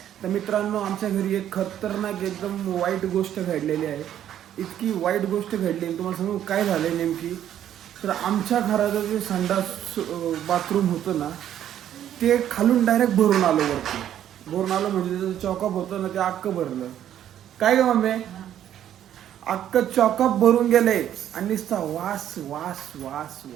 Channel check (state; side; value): quieter; left; 10.8 dB